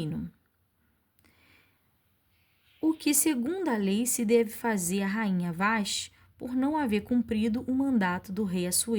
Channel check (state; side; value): identical; both; correlation 1.00